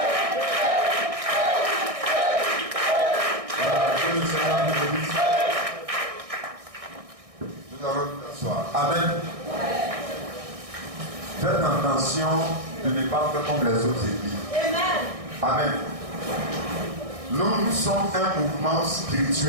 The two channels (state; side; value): late; left; 1.6 ms